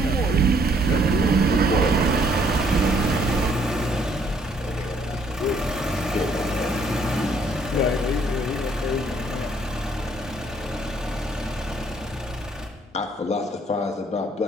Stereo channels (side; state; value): both; normal; correlation 0.65